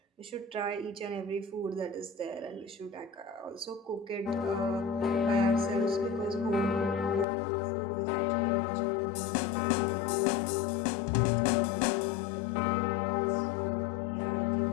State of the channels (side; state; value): right; drops out; at 7.2 s